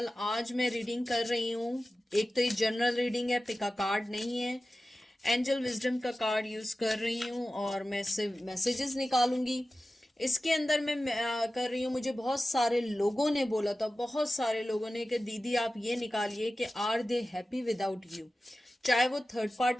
आज मैं reading कर रही हूँ। एक तो ये जनरल रीडिंग है, पिका कार्ड नहीं है। एंजल विजडम का कार्ड यूज कर रही हूँ और मैं इससे मैसेजेस निकालूंगी। इसके अंदर मैं कर रही हूँ। मुझे बहुत सारे लोगों ने बोला था, बहुत सारे लोगों ने, कि दीदी आप ये निकालिए कि are they happy without you. चाहे वो थर्ड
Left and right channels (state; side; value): normal; both; correlation 0.95